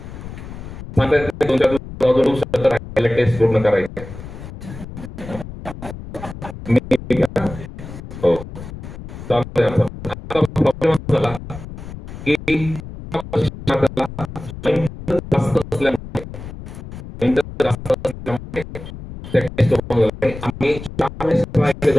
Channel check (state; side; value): noise; left; rumble, 12 dB below the sound